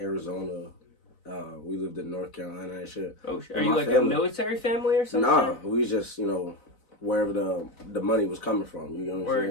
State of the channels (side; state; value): right; late; 4.0 ms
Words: We lived in North Carolina and shit. Oh shit! Are you a military family or something? Nah, we just wherever the money was coming from. You know what I'm